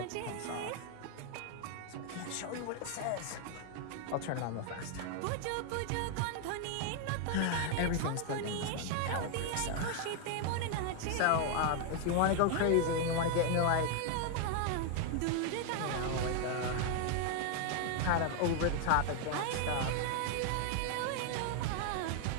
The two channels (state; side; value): different; both; correlation 0.00